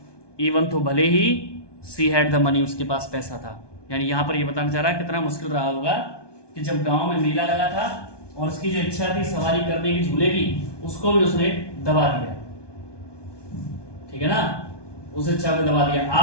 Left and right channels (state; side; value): late; right; 1.2 ms